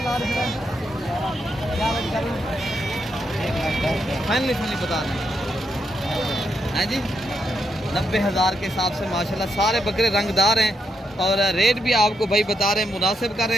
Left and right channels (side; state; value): both; normal; correlation 0.81